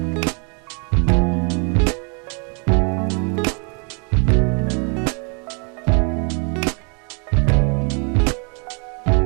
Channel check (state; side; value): quieter; left; 36.0 dB